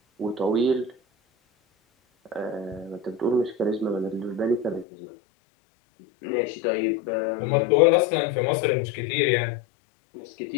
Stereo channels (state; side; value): drops out; right; at 4.9 s